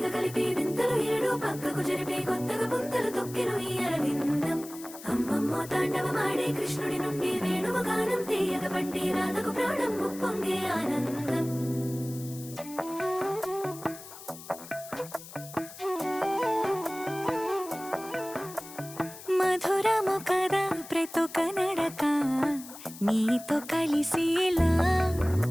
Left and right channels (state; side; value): noise; left; hiss, 15 dB below the sound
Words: కలిపి వింతలు ఏడు పక్కకు జరిపే కొత్తగా పుంతలు తొక్కెను ఈ అరవిందం అమ్మమ్మో తాండవమాడే కృష్ణుడి నుండి వేణువ గానం తీయగ పండి రాధకు ప్రాణం ముప్పొంగే ఆనందం మధురము కదా ప్రతొక నడక నీతో కలిసేలా